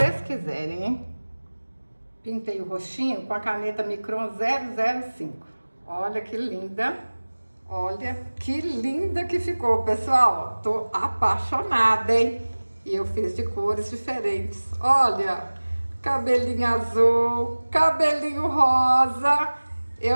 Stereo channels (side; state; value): both; inverted; correlation -1.00